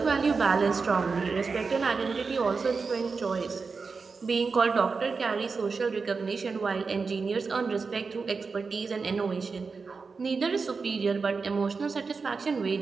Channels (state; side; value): quieter; left; 4.7 dB